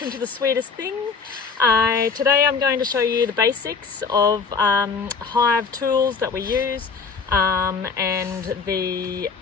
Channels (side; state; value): right; quieter; 5.2 dB